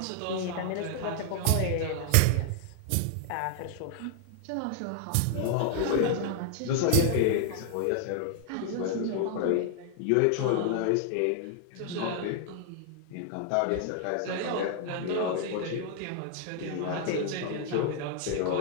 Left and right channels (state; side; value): different; both; correlation 0.00